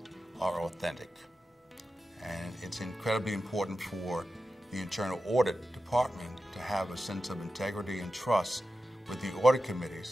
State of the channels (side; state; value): both; normal; correlation 0.92